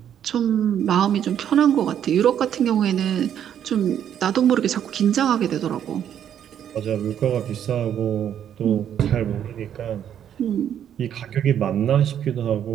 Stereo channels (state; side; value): quieter; left; 9.6 dB